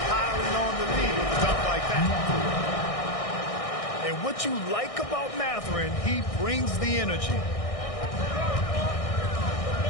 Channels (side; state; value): right; late; 1.6 ms